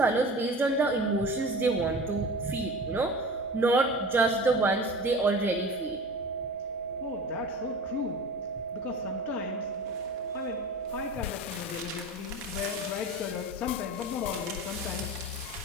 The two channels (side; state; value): both; normal; correlation 0.35